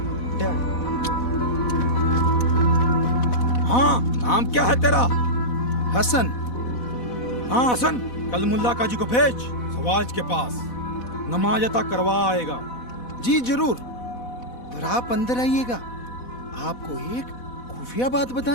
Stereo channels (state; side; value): late; right; 4.1 ms